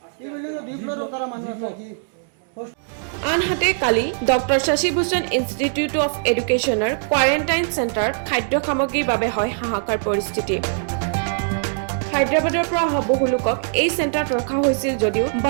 এই বিল্ডিংও 2 ফ্লোরও তারা মানুষ আছে। আনহাতে কালি doctor Shashi Bhushan institute of এডুকেশ্যনৰ কোৱাৰেণ্টাইন চেণ্টাৰত খাদ্য সামগ্ৰীৰ বাবে হয় হাহাকাৰ পৰিস্থিতি। হায়দৰাবাদৰ পৰা অহা বহু লোকক এই চেণ্টাৰত ৰখা হৈছিল যদিও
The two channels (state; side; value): silent; left; digital silence